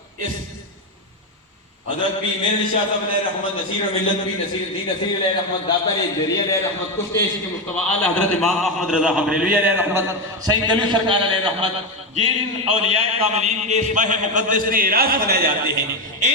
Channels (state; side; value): normal; both; correlation 0.11